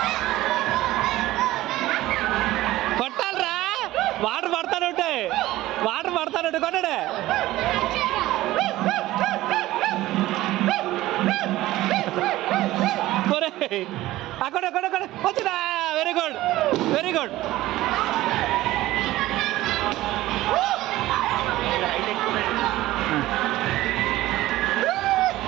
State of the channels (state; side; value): quieter; left; 16.5 dB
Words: కొట్టాలరా వాటర్ పడతానుంటాయి వాటర్ పడతానుంటే కొట్టాడే అక్కడ అక్కడ అక్కడ వచ్చినా వెరీ గుడ్ వెరీ గుడ్